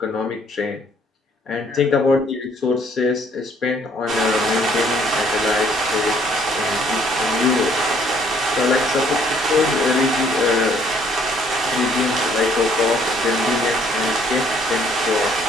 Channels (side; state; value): both; normal; correlation 0.63